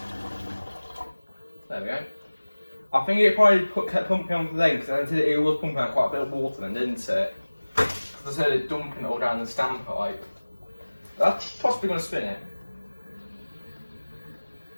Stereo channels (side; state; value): both; inverted; correlation -1.00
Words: There we go. I think it probably kept pumping on then, because it was pumping out quite a bit of water then, didn't it? Because I said it dumping it all down the standpipe. That's possibly going to spin it.